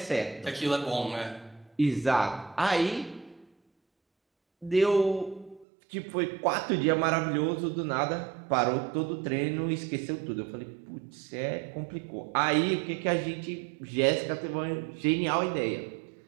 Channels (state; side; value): drops out; left; at 5.7 s